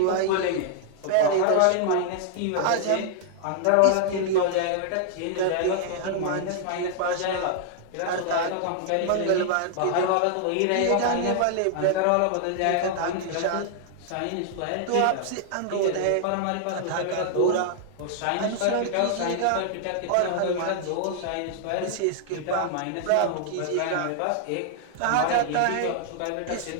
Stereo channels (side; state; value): both; different; correlation -0.01